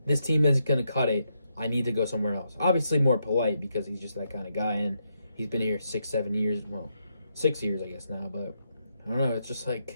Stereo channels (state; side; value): inverted; both; correlation -0.81